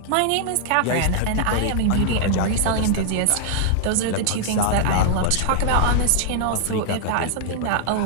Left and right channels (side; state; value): both; different; correlation -0.01